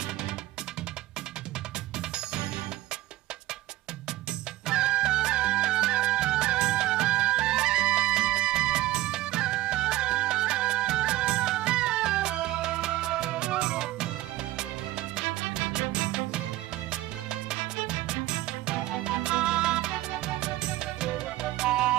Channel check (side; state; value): left; quieter; 16.1 dB